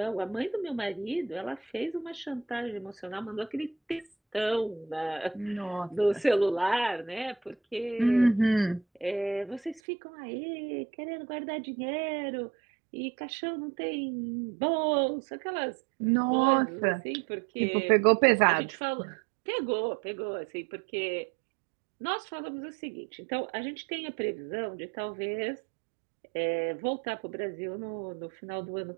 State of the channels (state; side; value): drops out; left; at 9.8 s